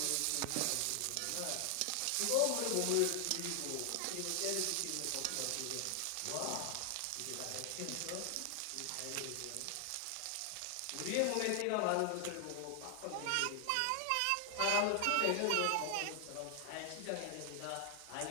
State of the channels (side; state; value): both; different; correlation 0.00